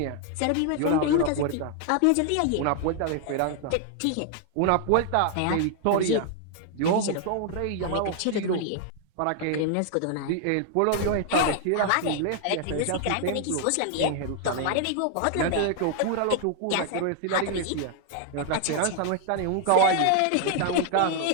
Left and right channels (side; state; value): both; different; correlation 0.00